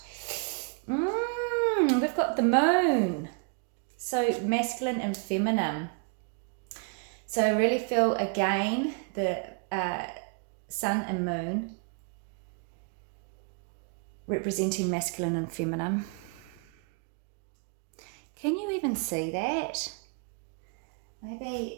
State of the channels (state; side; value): quieter; left; 37.0 dB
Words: We've got the moon. So masculine and feminine. So I really feel, again, the sun and moon representing masculine and feminine. Can you even see that?